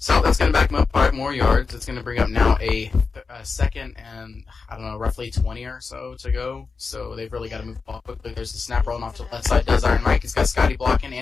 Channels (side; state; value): right; quieter; 4.7 dB